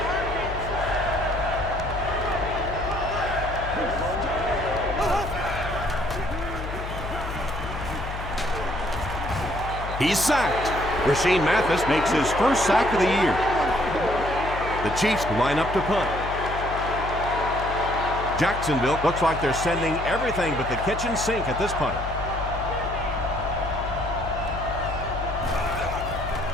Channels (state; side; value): noise; left; hum, 7 dB below the sound